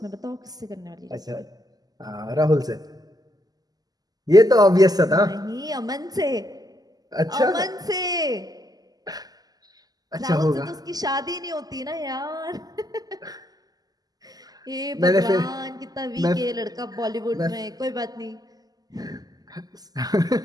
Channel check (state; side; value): late; left; 0.18 ms